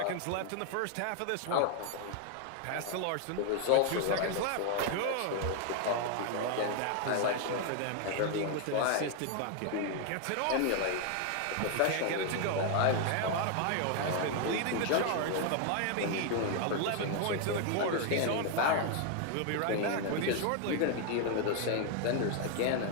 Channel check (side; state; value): both; different; correlation 0.00